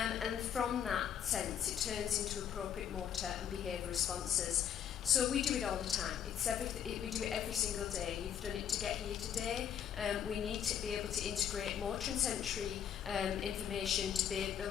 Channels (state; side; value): quieter; right; 9.2 dB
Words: from that sense, it turns into appropriate motor and behaviour responses. So we do it all the time. We do it every single day. You've done it to get here today. We need to be able to integrate motor and sensory information to be